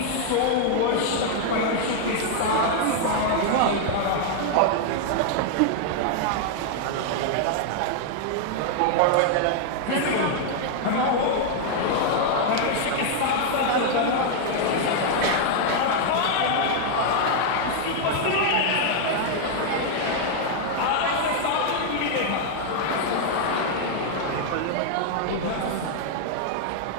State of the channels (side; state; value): both; different; correlation 0.00